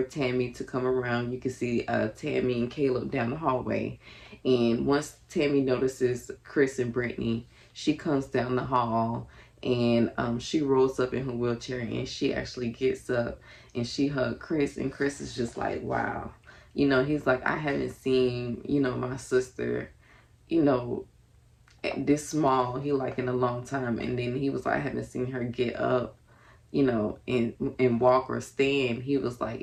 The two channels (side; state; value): both; identical; correlation 1.00